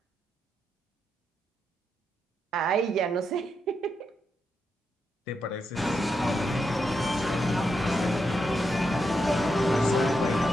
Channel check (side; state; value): both; normal; correlation 0.84